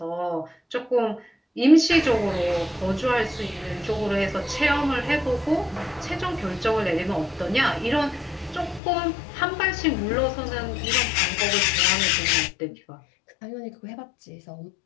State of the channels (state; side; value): drops out; right; at 8.8 s